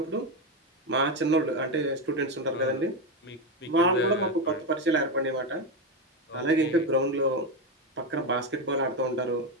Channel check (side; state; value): both; normal; correlation 0.10